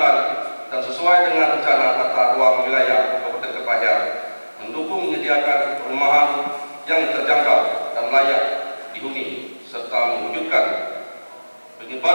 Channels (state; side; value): inverted; both; correlation -1.00